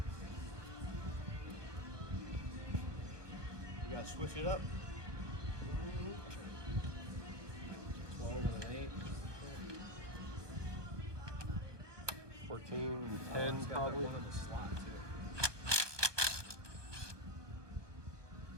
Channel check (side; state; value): left; late; 1.4 ms